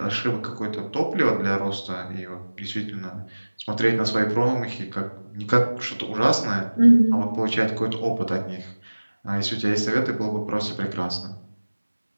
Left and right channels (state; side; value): inverted; both; correlation -1.00